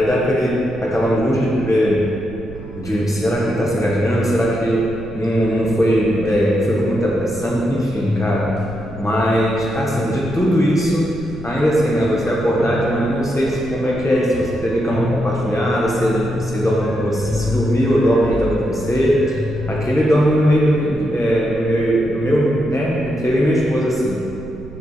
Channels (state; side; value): noise; right; rumble, 14 dB below the sound